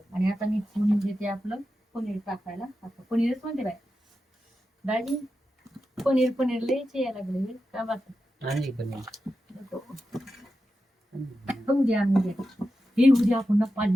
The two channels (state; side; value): normal; both; correlation 0.90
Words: आणि आता मी फोडणी देते आपलं पनीर टाकायला. आता पनीरच म्हणते बाय दाजी, पनीर लयच यायला लागले का बात. उद्या हे उद्या आपण ना